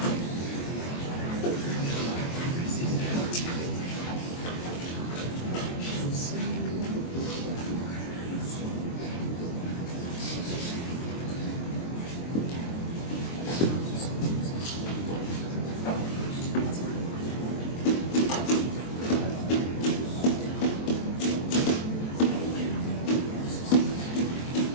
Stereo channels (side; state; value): right; late; 23 ms